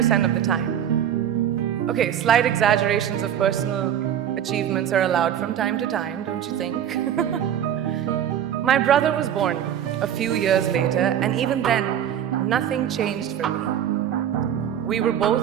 of the time. Okay, slight exaggerations of personal achievements are allowed from time to time, don't you think? My brother was born a few years later, and even then, nothing changed for me. We were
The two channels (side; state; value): left; quieter; 10.0 dB